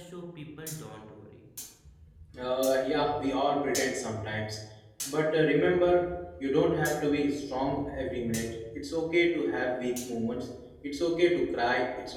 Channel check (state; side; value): identical; both; correlation 1.00